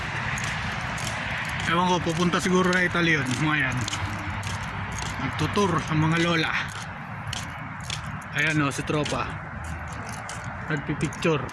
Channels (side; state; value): both; identical; correlation 1.00